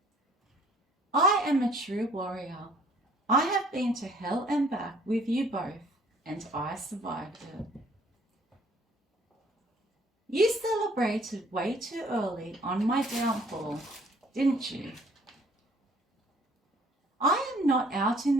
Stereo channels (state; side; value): normal; both; correlation 0.58